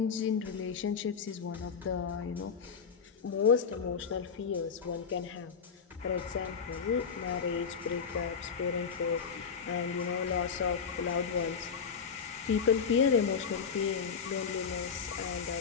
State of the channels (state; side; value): quieter; right; 6.2 dB